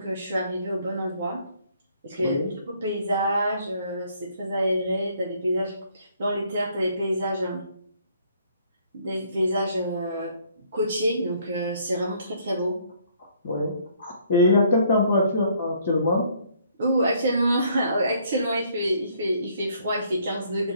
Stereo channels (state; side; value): inverted; both; correlation -0.65